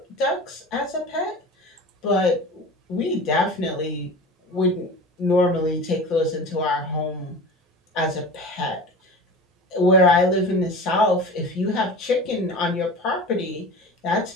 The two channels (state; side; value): normal; both; correlation 0.35